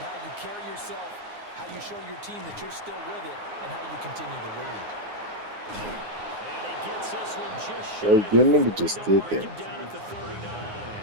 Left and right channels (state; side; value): late; left; 9.6 ms